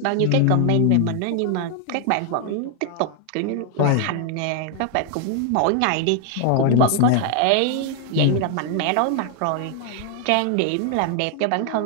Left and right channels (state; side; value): different; both; correlation 0.00